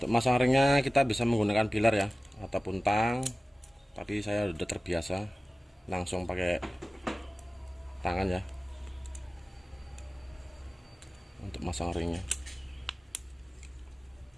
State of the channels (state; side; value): normal; both; correlation 0.97